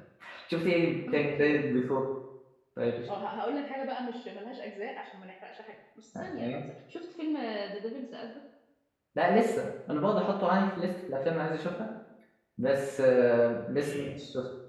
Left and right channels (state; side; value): identical; both; correlation 1.00